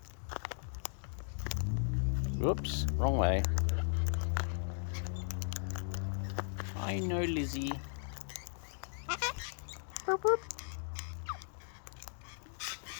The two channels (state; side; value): silent; right; digital silence